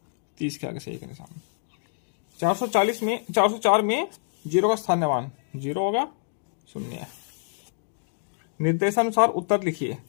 30 के आगे सही का निशान। 404 में 0 का स्थानीय मान 0 होगा, 0 है। निर्देशानुसार उत्तर लिखिए।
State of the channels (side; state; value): right; silent; digital silence